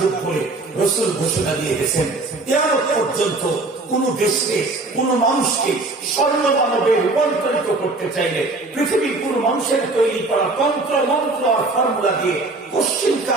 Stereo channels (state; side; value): quieter; left; 3.2 dB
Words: বলে রাসূল ঘোষণা দিয়ে গেছেন। কিয়ামত পর্যন্ত কোন দেশকে, কোন মানুষকে স্বর্ণ মানবে রূপান্তরিত করতে চাইলে পৃথিবীর কোন মানুষের তৈরি করা তন্ত্র মন্ত্র আর ফর্মুলা দিয়ে